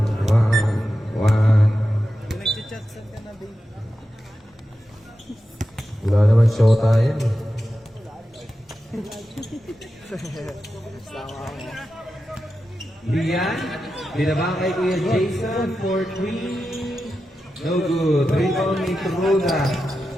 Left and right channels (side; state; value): both; normal; correlation 0.91